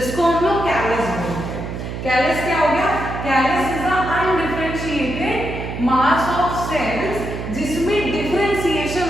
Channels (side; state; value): right; noise; hum, 6 dB below the sound